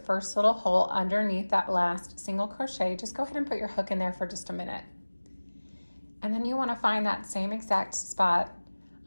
first little hole underneath that last single crochet, just go ahead and put your hook in there for just a minute. And then you want to find that same exact spot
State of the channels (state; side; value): inverted; both; correlation -1.00